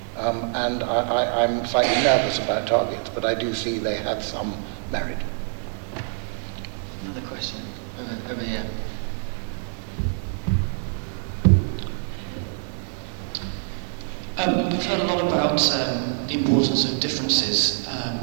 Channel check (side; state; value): left; silent; digital silence